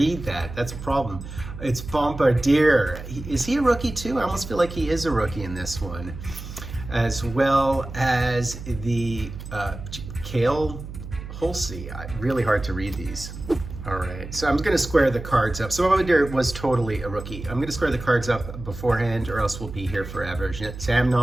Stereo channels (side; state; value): right; noise; hum, 11 dB below the sound